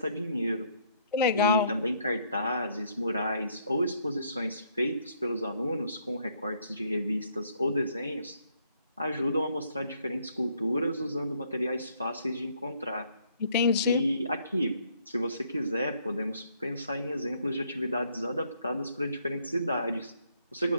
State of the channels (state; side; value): inverted; both; correlation -0.67